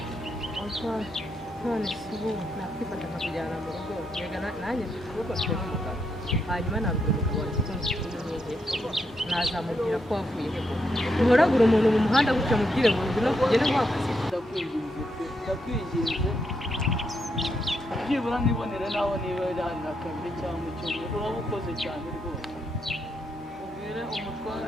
none si ubu nakwifata nkakujyana mu rugo mbega nanjye mfite ukuboko mfite n'umugabo hanyuma nabwira umugabo wanjye ko mfite n'umwenge nazamubwira ko wavuye he uhoragura umuntu mu muhanda gutya mubwire ngo ngwino tugende guhagaze ndakwinginze byibura nibonere naho niba hari na kabiri cyangwa icyumweru uraba ukoze cyane rwose ubwire umutware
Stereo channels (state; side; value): normal; both; correlation 0.80